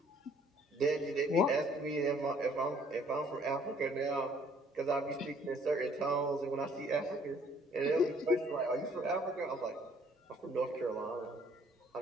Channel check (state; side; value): normal; both; correlation 0.60